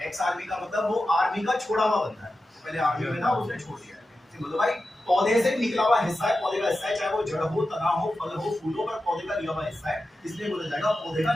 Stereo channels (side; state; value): both; normal; correlation 0.92